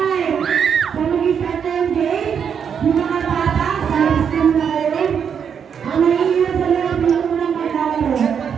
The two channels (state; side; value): quieter; left; 7.4 dB